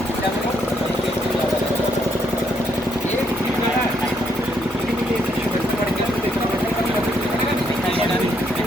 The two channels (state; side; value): normal; both; correlation 0.73